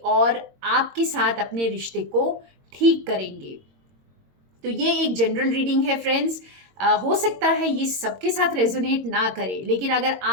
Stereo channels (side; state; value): left; late; 22 ms